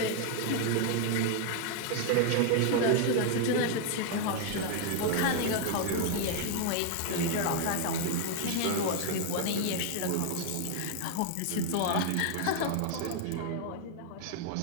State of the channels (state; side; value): different; both; correlation 0.00